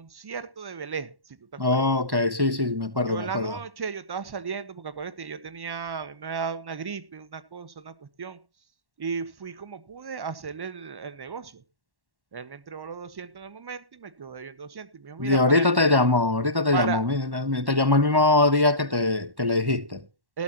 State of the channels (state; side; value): late; left; 1.1 ms